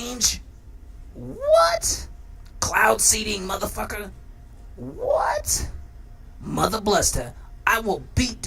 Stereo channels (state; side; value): identical; both; correlation 1.00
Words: What? Cloud seeding, motherfucker? What? Mother bluster. I will beat